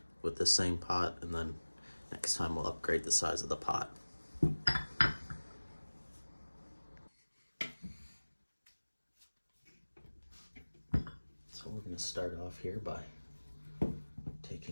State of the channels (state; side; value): inverted; both; correlation -1.00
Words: with the same pot and then next time we'll upgrade the size of the pot. So we're going to start off here by